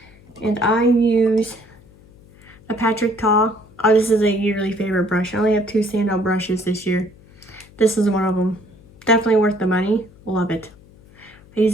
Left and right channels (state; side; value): noise; left; hum, 25 dB below the sound